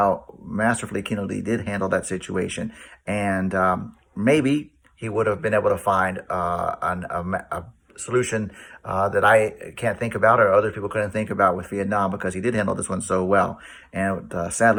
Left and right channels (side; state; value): both; identical; correlation 1.00